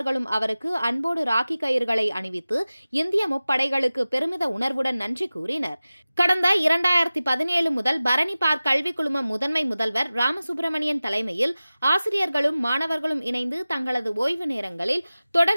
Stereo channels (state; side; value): inverted; both; correlation -0.96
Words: அவருக்கு அன்போடு ராக்கி கயிறுகளை அணிவித்து இந்திய முப்படைகளுக்கு பெருமித உணர்வுடன் நன்றி கூறினர். கடந்த 2017 முதல் பரணி பார்க் கல்வி குழும முதன்மை முதல்வர் ராமசுப்பிரமணியன் தலைமையில் ஆசிரியர்களும் மாணவர்களும் இணைந்து தங்களது ஓய்வு நேரங்களில்